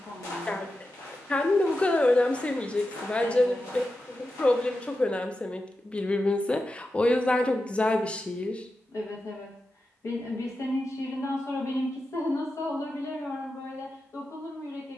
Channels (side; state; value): both; normal; correlation 0.90